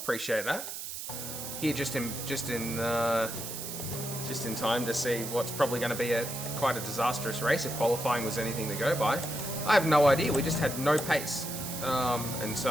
that. Here, just in time to see what's probably going to be quite a disastrous race if qualifying was anything to go by. I have no idea. We just had no pace, and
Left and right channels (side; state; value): right; noise; hiss, 7 dB below the sound